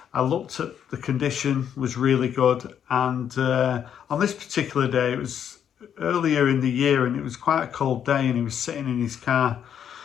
I looked at the condition, was really good, and on this particular day, it was earlier in the year and it was quite a cold day, and he was sitting in his car,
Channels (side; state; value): right; quieter; 8.9 dB